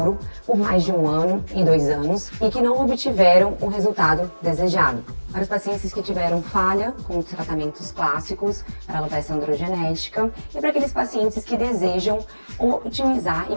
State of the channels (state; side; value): inverted; both; correlation -1.00